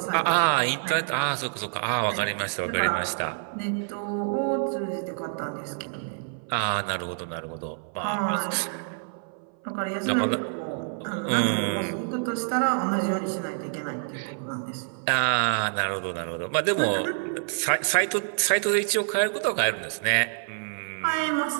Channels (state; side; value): silent; left; 58 dB below the other